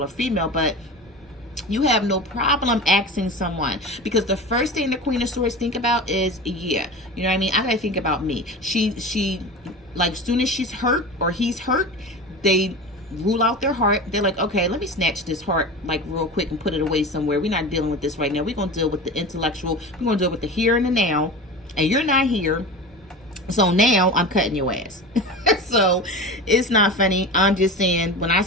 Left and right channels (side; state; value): both; normal; correlation 0.30